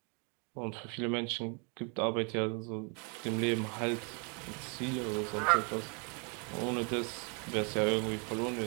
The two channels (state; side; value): quieter; left; 35.6 dB